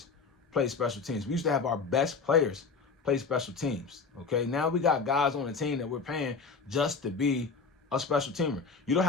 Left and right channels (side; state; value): right; quieter; 4.8 dB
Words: play special teams? We used to have our best players play special teams. Okay, now we got guys on the team that we're paying just to be a special teamer. You don't